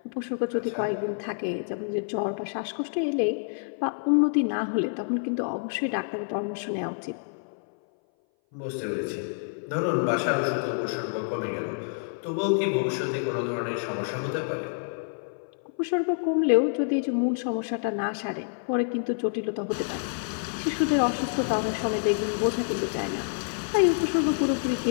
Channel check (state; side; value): silent; right; 58 dB below the other